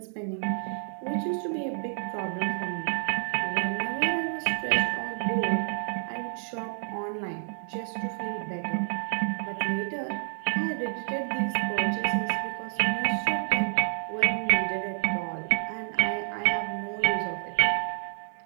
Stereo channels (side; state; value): left; silent; 58 dB below the other